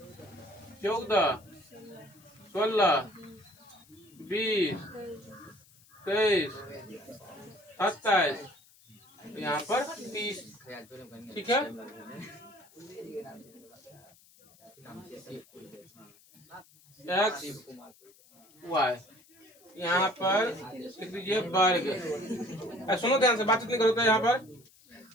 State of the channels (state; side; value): noise; left; hiss, 27 dB below the sound